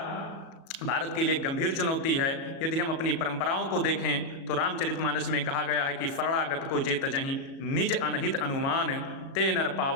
भारत के लिए गंभीर चुनौती है। यदि हम अपनी परंपराओं को देखें तो रामचरितमानस में कहा गया है कि शरणागत को जे तजहि निज अनहित अनुमान ते नर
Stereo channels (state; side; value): late; right; 37 ms